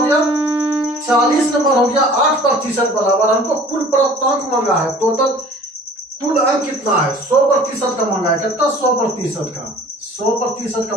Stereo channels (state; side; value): normal; both; correlation 0.48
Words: गया? 40 नंबर हो गया। 8% बराबर हमको कुल प्राप्तांक मांगा है। टोटल कुल अंक कितना है? 100% का मांगा है। कितना? 100% का। 100% का